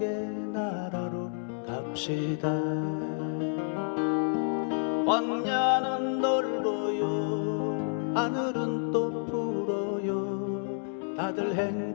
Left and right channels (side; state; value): right; silent; 58 dB below the other